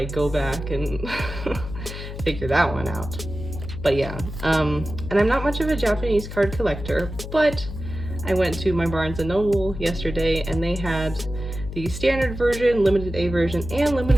go back and figure that one out. But yeah, and I'm not much of a Japanese card collector, but I went to my Barnes & Noble yesterday and they had the standard version, limited A version, and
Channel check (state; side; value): noise; left; hum, 9 dB below the sound